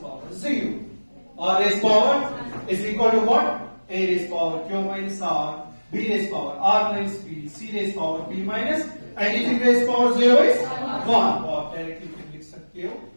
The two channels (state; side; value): inverted; both; correlation -1.00